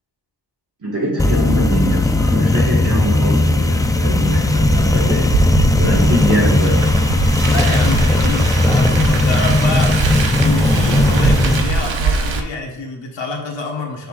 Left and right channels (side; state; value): both; normal; correlation 0.74